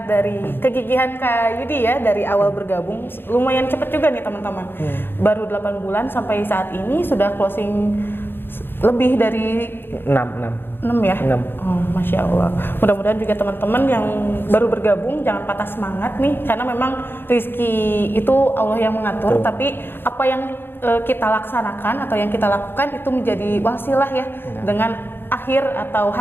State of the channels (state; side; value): late; right; 0.10 ms